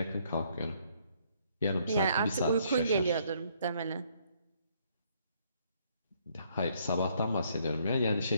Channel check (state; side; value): inverted; both; correlation -0.67